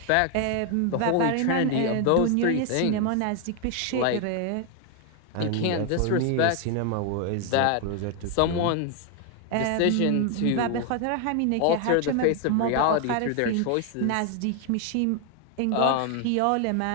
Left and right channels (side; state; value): both; different; correlation 0.00